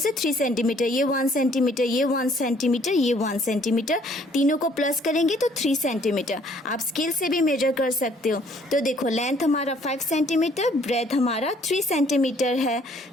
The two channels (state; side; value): normal; both; correlation 0.62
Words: 3 सेंटीमीटर, ये 1 सेंटीमीटर, ये 1 सेंटीमीटर, ये 1 सेंटीमीटर, तीनों को प्लस करेंगे तो 3 सेंटीमीटर। आप स्केल से भी मेजर कर सकते हो। तो देखो लेंथ हमारा 5 सेंटीमीटर, ब्रेथ हमारा 3 सेंटीमीटर है,